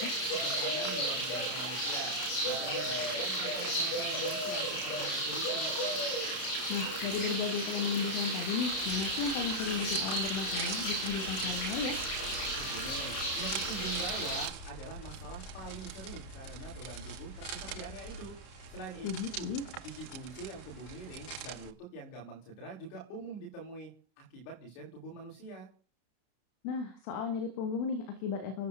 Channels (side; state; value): right; late; 31 ms